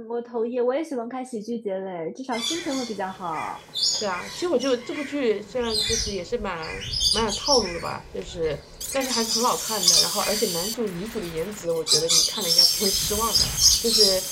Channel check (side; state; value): both; identical; correlation 1.00